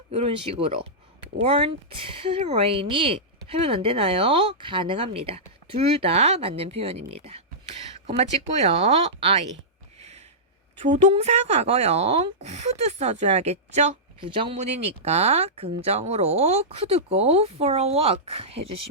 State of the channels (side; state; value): both; normal; correlation -0.14